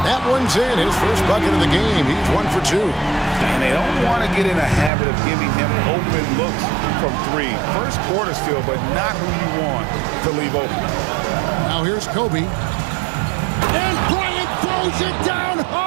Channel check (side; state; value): left; drops out; at 4.9 s